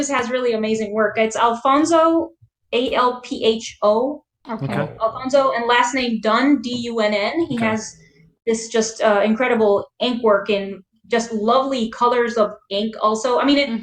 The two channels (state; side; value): identical; both; correlation 1.00